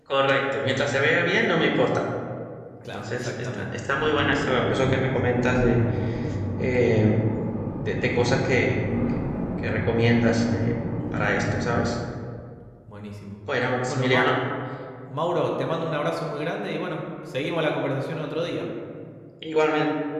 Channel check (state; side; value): identical; both; correlation 1.00